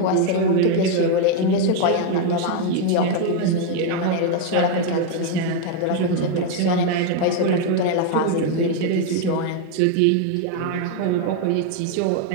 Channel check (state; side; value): different; both; correlation 0.01